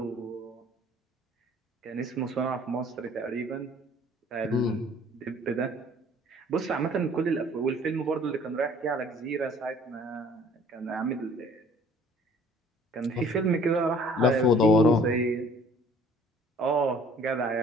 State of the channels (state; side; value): normal; both; correlation 0.54